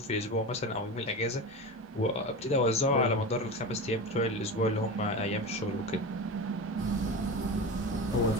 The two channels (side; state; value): both; normal; correlation 0.26